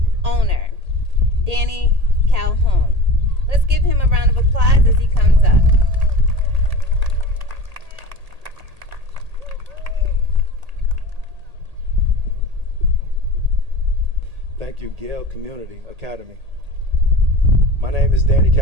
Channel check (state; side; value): late; left; 1.8 ms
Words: owner, Danny Calhoun. Let's give him a round of applause as he comes up. Thank you, Gale Community Academy. My name is Danny